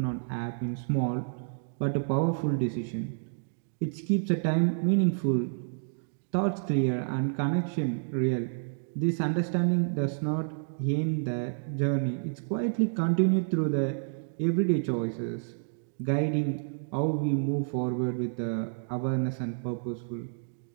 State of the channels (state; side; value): silent; left; digital silence